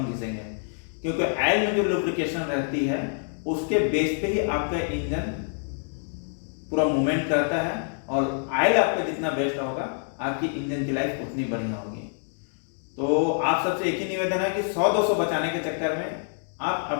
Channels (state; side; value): silent; right; digital silence